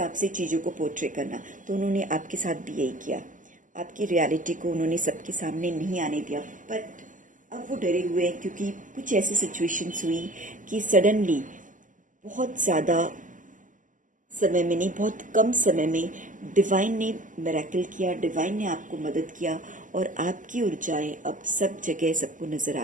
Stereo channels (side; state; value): left; late; 0.38 ms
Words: से चीज़ों को पोर्ट्रे करना। तो उन्होंने आपके साथ भी यही किया, आपकी रियलिटी को उन्होंने सबके सामने नहीं आने दिया। बट अब वो डरे हुए हैं, क्योंकि कुछ ऐसी सिचुएशंस हुई कि सडनली बहुत ज़्यादा समय में नहीं, बहुत कम समय में डिवाइन ने मिरेकल किया, डिवाइन ने आपको मदद किया, और आपकी ऊर्जाएं अब सब जगह सबको नज़र